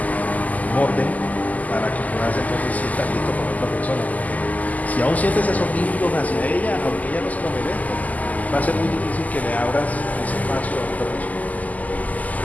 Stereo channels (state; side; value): late; right; 0.078 ms